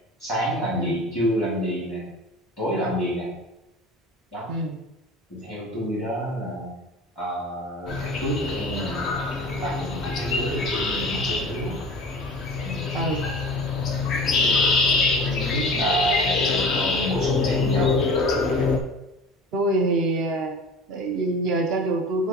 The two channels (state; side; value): normal; both; correlation 0.39